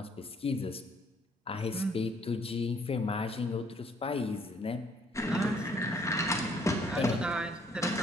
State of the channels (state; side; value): normal; both; correlation 0.63